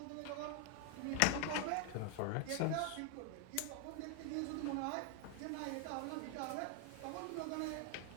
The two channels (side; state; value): both; different; correlation 0.00